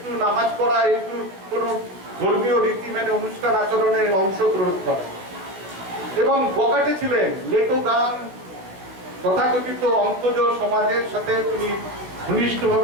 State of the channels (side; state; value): left; late; 16 ms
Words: নামাজ পড়া, একটু কোন ধর্মীয় রীতি মেনে অনুষ্ঠান আচরণে অংশগ্রহণ করা, এবং বকাটে ছিলেন। লেটো গান, তথাকথিত অন্তজ সমাজের সাথে তিনি